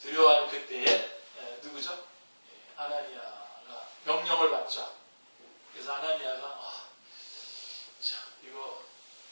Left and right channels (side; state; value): both; inverted; correlation -1.00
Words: 두려워하는 그때에 누구죠? 아나니아가 명령을 받죠. 그래서 아나니아가 이거